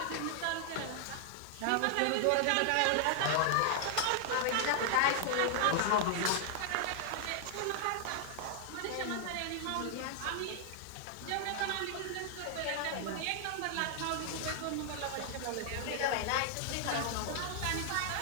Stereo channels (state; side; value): different; both; correlation 0.00